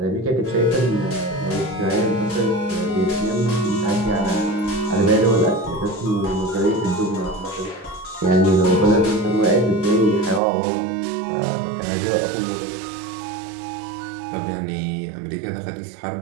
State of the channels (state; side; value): drops out; left; at 10.4 s